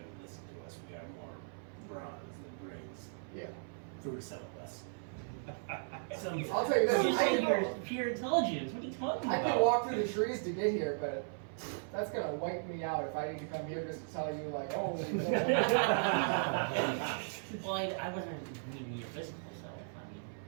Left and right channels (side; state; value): left; silent; 53 dB below the other